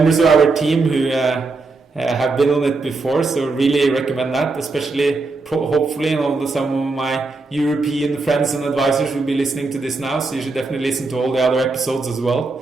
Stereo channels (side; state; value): left; quieter; 3.7 dB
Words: of our team who have been on it before. So really recommend that, especially hopefully some of my European friends and advisors will be listening to this now. So you should definitely listen to all the other episodes as well.